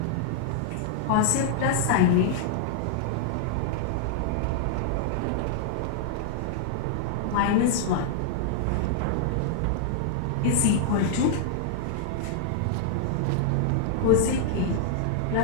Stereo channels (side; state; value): both; different; correlation -0.01